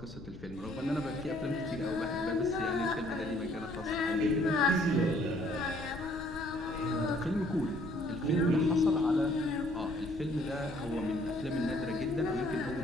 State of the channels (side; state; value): left; noise; rumble, 15 dB below the sound